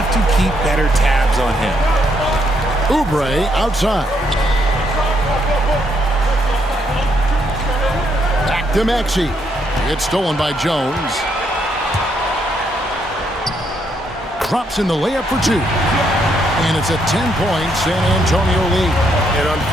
to keep better tabs on him. Oubre outside. Back to Maxey. It's stolen by Jones. Drops in the layup for 2. And it's a 10-point San Antonio lead. And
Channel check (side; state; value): both; normal; correlation 0.74